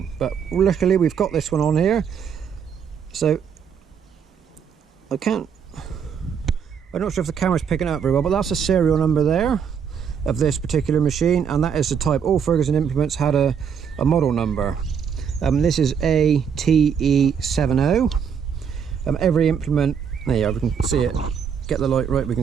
But luckily we've got this one on here. So I'm not sure if the camera's picking up very well, but that's the serial number there of this particular machine, and that is the type. All Ferguson implements had a model number. This is ATE70. Every implement, there you are, we can see it, get the light right, we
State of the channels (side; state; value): left; quieter; 7.2 dB